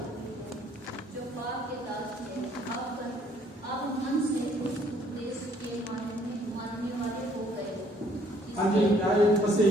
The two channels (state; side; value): normal; both; correlation 0.63